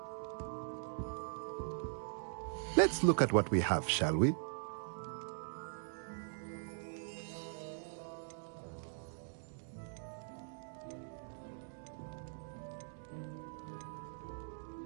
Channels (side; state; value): left; silent; digital silence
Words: Let's look at what we have, shall we?